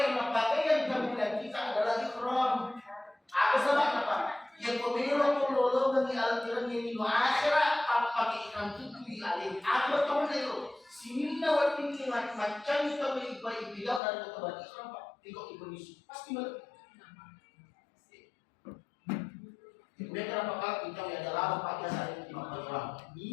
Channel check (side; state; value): right; drops out; at 14.0 s